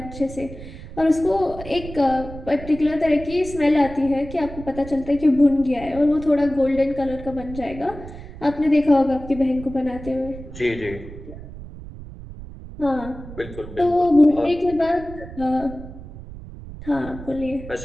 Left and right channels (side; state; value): right; noise; rumble, 14 dB below the sound